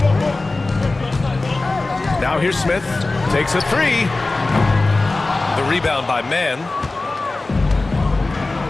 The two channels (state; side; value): quieter; right; 3.2 dB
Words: Now here's Smith. Takes a three. The rebound by Mann.